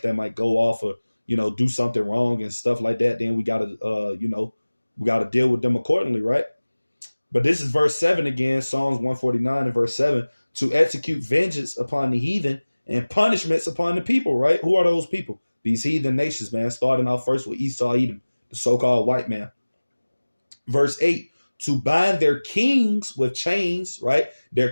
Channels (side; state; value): both; inverted; correlation -1.00